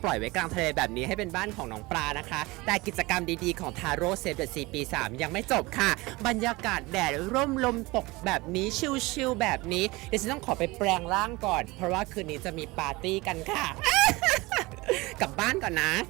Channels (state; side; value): quieter; left; 22.4 dB